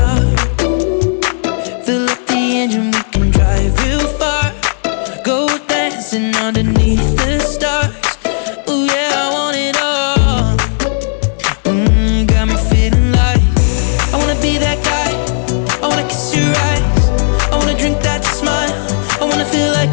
Fill up the engine, we can drive real far. Go dancing underneath the stars. Ooh yeah, I want it all. Got me feeling like I wanna be that guy. I wanna kiss your eyes, I wanna drink that smile, I wanna feel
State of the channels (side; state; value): right; silent; digital silence